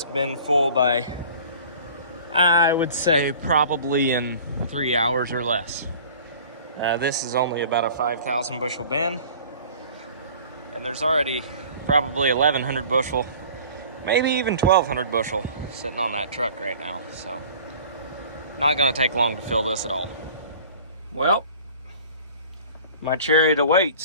bin full by, I would say, probably in 3 hours or less. This is only about a 5,000 bushel bin, and there's already probably 1,100 bushel, maybe even 1,200 bushel sitting on that truck right now. So not gonna take long to fill this at all. Well, my chariot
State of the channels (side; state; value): both; inverted; correlation -0.46